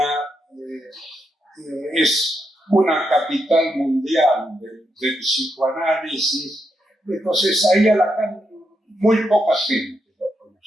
es una capital mundial del psicoanálisis. Entonces ahí a Lacan muy poca gente lo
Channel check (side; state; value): both; normal; correlation 0.82